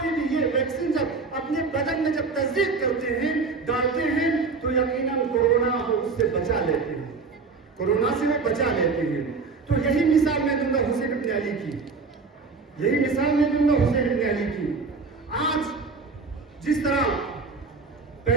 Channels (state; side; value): quieter; left; 4.4 dB